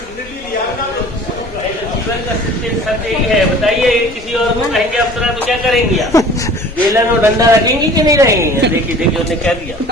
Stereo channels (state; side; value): normal; both; correlation 0.46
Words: जीवन का सत्य यही है। बताइए किसी और को कहेंगे अप्सरा तो क्या करेंगी आप? बेलन और डंडा रखेंगी कि नहीं रहेंगी? देखिए देखिए उन्हें कह दिया।